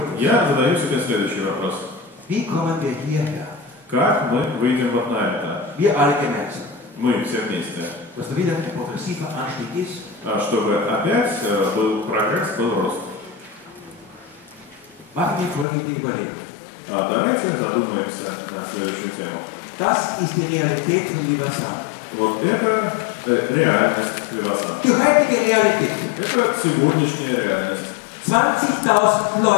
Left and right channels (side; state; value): right; drops out; at 15.7 s